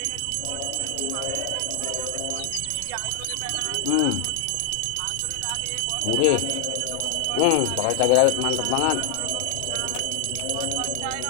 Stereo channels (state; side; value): different; both; correlation 0.00